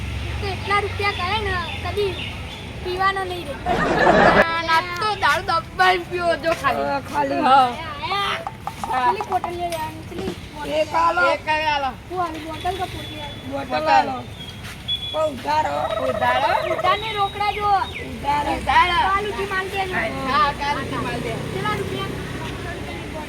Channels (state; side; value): identical; both; correlation 1.00